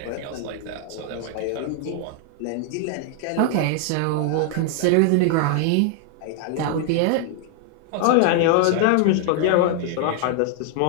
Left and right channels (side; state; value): both; different; correlation 0.00